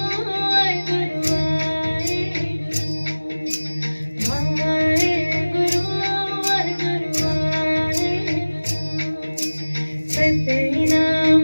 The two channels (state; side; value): inverted; both; correlation -1.00